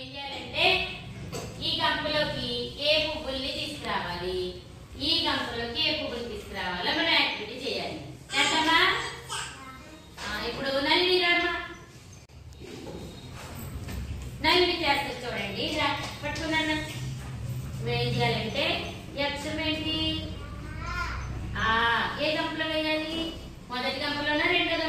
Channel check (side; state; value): both; identical; correlation 1.00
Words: చేయాలంటే ఈ గంపలోకి ఏ పువ్వుల్ని తీసుకురావాలి, ఈ గంపలోకి ఏ పువ్వులు తీసుకురావాలో మనం యాక్టివిటీ చేయాలి. చేద్దామా? ఇప్పుడు నల్లి రామా, నల్లి చేస్తారు చూడండి. పట్టుకున్నాను. ఏం చేయాలంటే ఈ అక్షరం ఏంటి? ఏ గంపలో వేయాలి? మొదటి గంపలోనా రెండో